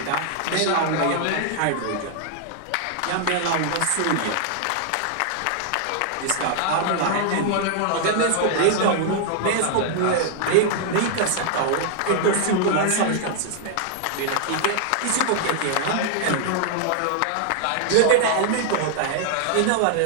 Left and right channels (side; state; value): both; different; correlation -0.01